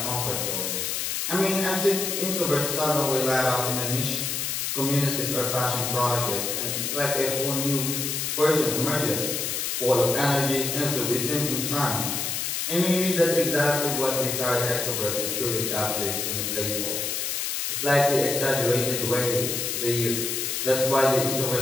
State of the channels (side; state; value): left; noise; hiss, 1 dB below the sound